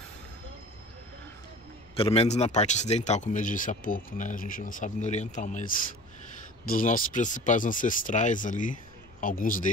Pelo menos na parte ocidental, como eu disse há pouco, né? A gente não sabe no oriental, mas dos nossos principais ancestrais ali, alguns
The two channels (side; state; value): left; noise; rumble, 28 dB below the sound